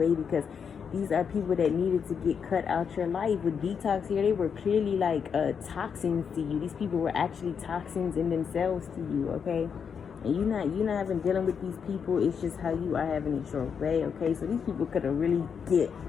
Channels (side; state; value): right; quieter; 6.8 dB